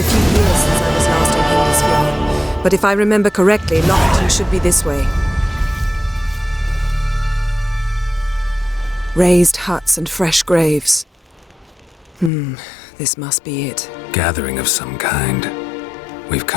few years since I was last in Hindersfjall. But if I remember correctly, Lofoten should be this way. Raised huts and fresh graves. This must be it. Gathering of some kind. We've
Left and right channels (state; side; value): drops out; right; at 12.3 s